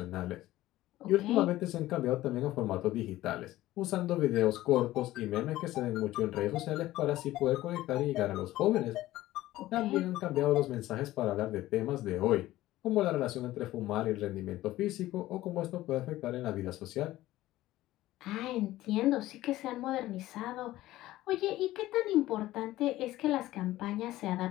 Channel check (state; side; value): quieter; right; 15.9 dB